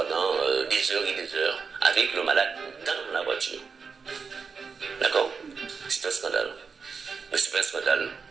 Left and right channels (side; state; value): left; quieter; 5.4 dB